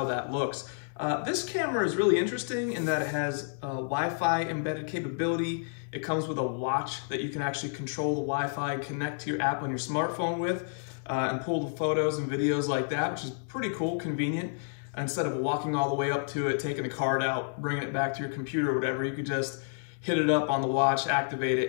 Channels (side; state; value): right; silent; 58 dB below the other